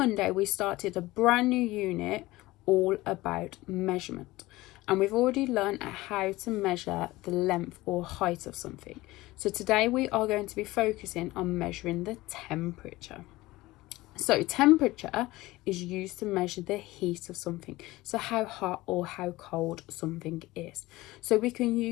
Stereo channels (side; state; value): right; quieter; 19.1 dB